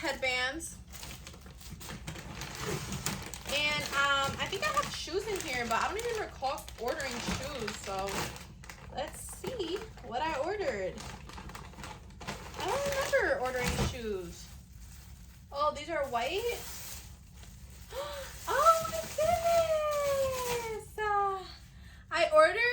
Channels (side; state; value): both; identical; correlation 1.00